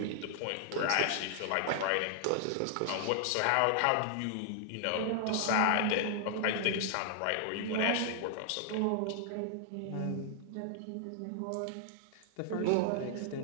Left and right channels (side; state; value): both; different; correlation 0.00